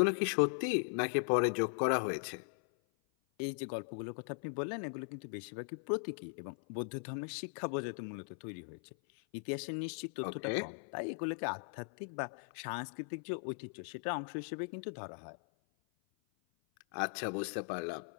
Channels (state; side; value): silent; right; 52 dB below the other